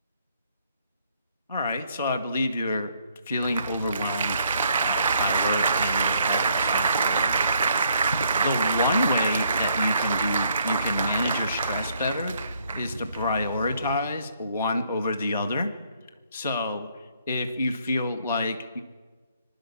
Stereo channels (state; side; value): inverted; both; correlation -0.68